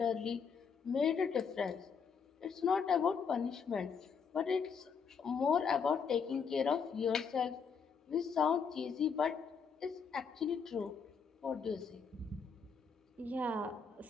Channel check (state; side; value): quieter; right; 6.0 dB